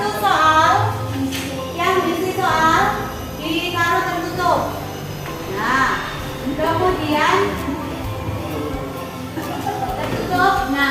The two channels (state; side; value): identical; both; correlation 1.00